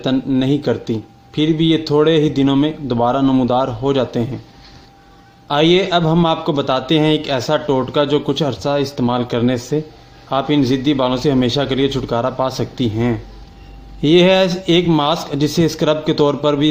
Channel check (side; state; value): both; identical; correlation 1.00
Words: नहीं करती, फिर भी ये थोड़े ही दिनों में दोबारा नमूदार हो जाते हैं। आइए अब हम आपको बताते हैं एक ऐसा टोटका जो कुछ अर्सा इस्तेमाल करने से आप इन ज़िद्दी बालों से हमेशा के लिए छुटकारा पा सकती हैं। ये है एक मास्क जिसे स्क्रब के तौर पर भी